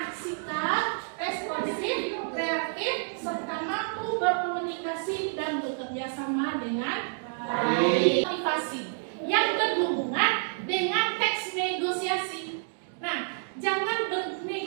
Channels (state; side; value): silent; left; digital silence